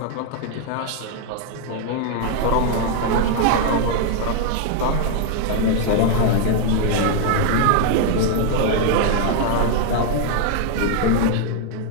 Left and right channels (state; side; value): different; both; correlation 0.00